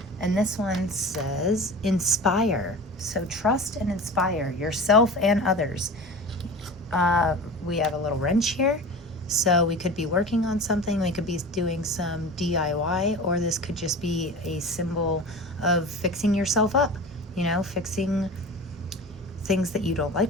And this one says inspire. So trust and inspire yourself and others. We have a little wrench here. So we could be working on something, we could be doing some DIY, or this could just be a symbol of fixing yourself up, fixing things that you don't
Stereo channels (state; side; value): normal; both; correlation 0.34